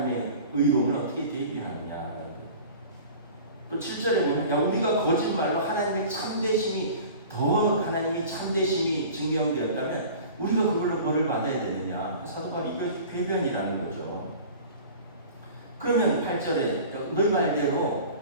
의로움을 어떻게 대비하느냐. 또 7절에 보면 야 우리가 거짓말로 하나님의 참되심이 증명되었다면 우리가 그걸로 벌을 받아야 되느냐. 사도 바울이 이거 궤변이라는 거죠. 그러면 8절에 너희 말대로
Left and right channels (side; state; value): both; inverted; correlation -0.41